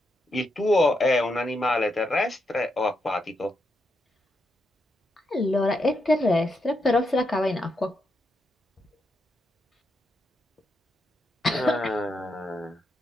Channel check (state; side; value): normal; both; correlation 0.82